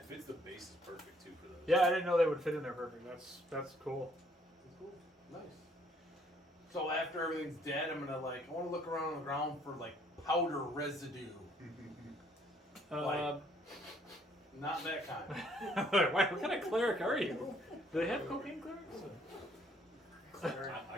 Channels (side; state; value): both; normal; correlation 0.65